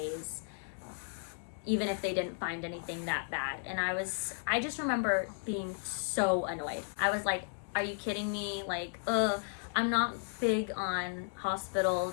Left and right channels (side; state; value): right; silent; digital silence